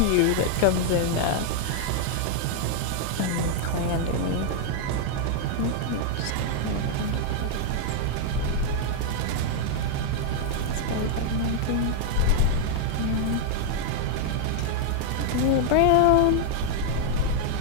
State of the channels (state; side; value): different; both; correlation 0.00